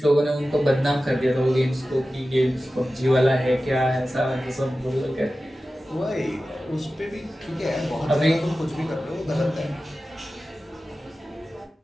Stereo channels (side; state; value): both; normal; correlation 0.95